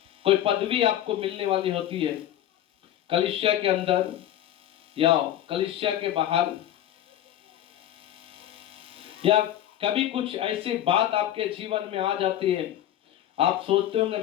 कोई पदवी आपको मिलने वाली होती है कलीसिया के अंदर या कलीसिया के बाहर, या कभी कुछ ऐसी बात आपके जीवन में आ जाती है, आप सोचते होंगे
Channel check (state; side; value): quieter; right; 12.0 dB